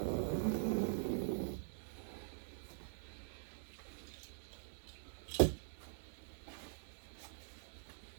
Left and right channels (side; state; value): left; silent; digital silence